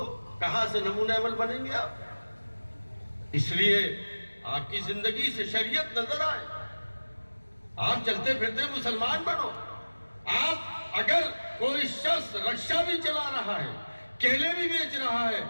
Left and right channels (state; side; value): inverted; both; correlation -1.00